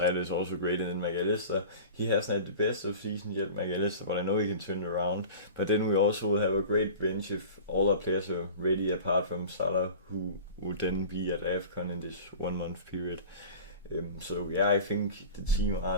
is also great. And then McAllister, he hasn't had the best of season yet, McAllister, but I know he can turn it around. But then we also will have a great bench if all our players are ready, apart from Salah, who would then be at AFCON in this 1 month period. So yeah, I think the team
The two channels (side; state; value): both; inverted; correlation -0.38